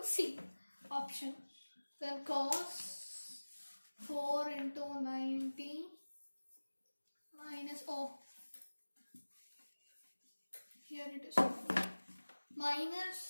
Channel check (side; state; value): both; inverted; correlation -1.00